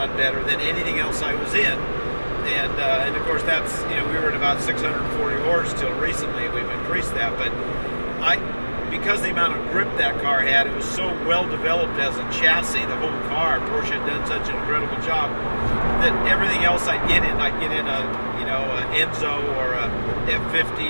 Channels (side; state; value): both; inverted; correlation -1.00